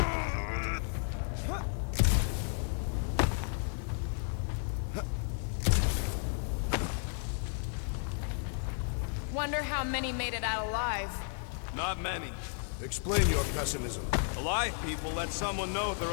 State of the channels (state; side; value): silent; right; 56 dB below the other